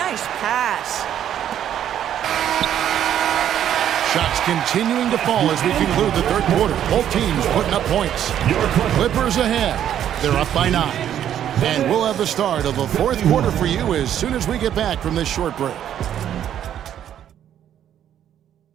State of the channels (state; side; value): quieter; left; 10.3 dB